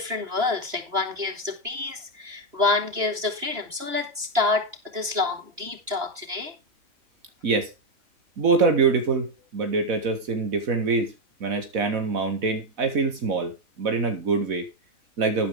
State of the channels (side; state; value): left; late; 2.9 ms